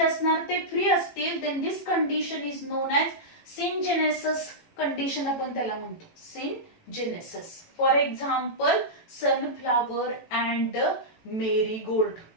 असणार ते फ्री असतील, then this condition is known as syngenesis condition आपण त्याला म्हणतो, syngenesis. For example sunflower and marigold.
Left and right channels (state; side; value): late; right; 18 ms